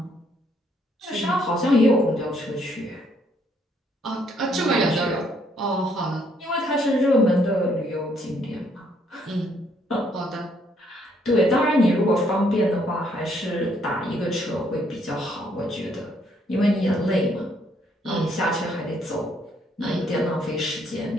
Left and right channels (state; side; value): normal; both; correlation 0.69